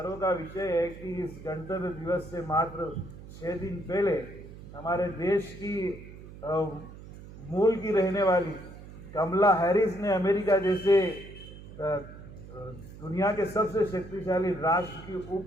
का विषय है कि इस गणतंत्र दिवस से मात्र 6 दिन पहले हमारे देश की मूल की रहने वाली कमला हैरिस ने अमेरिका जैसे दुनिया के सबसे शक्तिशाली राष्ट्र की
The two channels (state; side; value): noise; right; hum, 15 dB below the sound